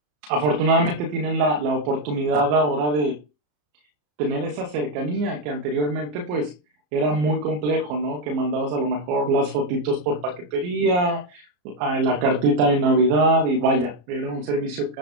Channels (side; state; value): left; late; 34 ms